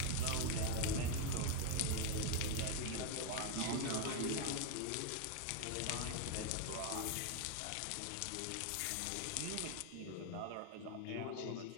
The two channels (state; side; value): different; both; correlation 0.01